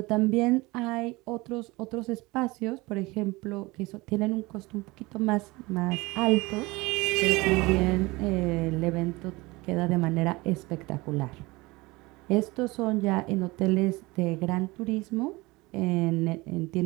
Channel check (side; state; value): left; quieter; 22.5 dB